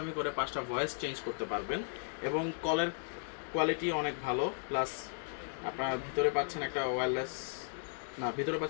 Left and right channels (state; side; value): silent; right; digital silence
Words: করে 5টা ভয়েস চেঞ্জ করতে পারবেন, এবং কলের কোয়ালিটি অনেক ভালো। প্লাস আপনার ভিতরে পাচ্ছেন একটা ওয়্যারলেস, না ভিতরে